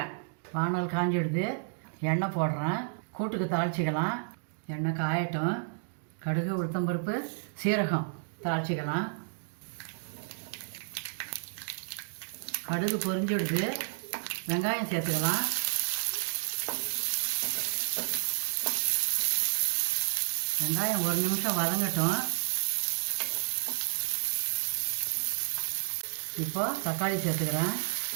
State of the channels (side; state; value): left; silent; digital silence